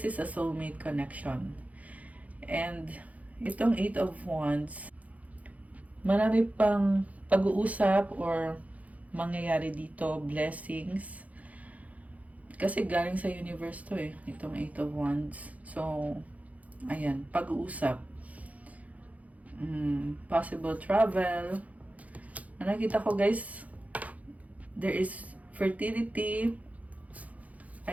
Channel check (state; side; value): late; left; 0.071 ms